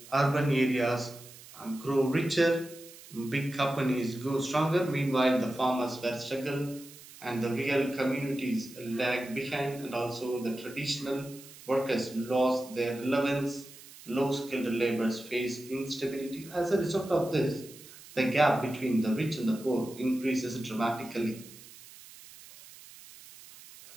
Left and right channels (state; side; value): noise; right; hiss, 19 dB below the sound